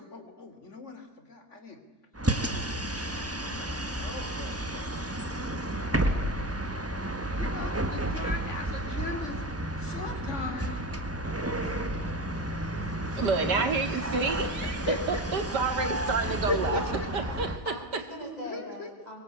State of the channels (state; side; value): normal; both; correlation 0.23